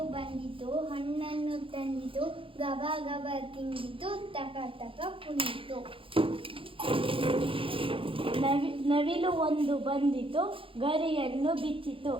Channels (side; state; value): left; late; 0.26 ms